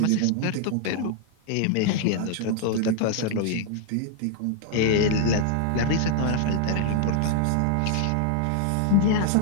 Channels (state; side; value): different; both; correlation 0.00